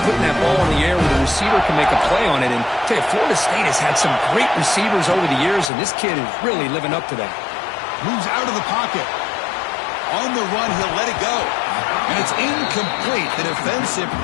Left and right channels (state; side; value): drops out; right; at 5.7 s